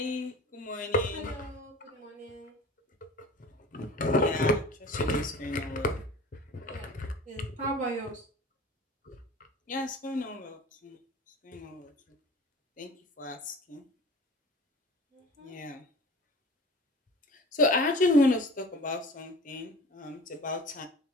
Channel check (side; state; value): both; normal; correlation 0.41